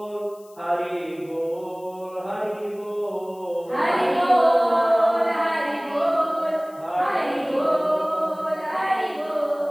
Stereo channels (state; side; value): noise; left; hiss, 27 dB below the sound